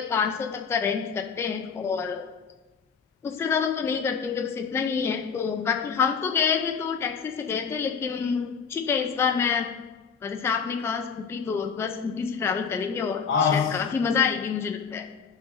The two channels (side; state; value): right; quieter; 6.1 dB